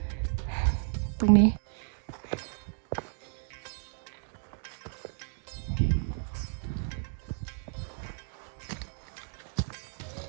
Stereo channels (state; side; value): silent; left; 56 dB below the other